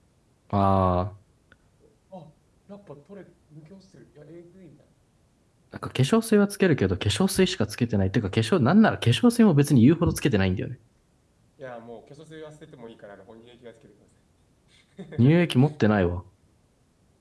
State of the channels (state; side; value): identical; both; correlation 1.00